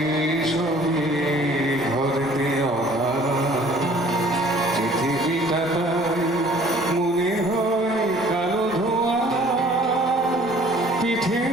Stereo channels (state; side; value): normal; both; correlation 0.53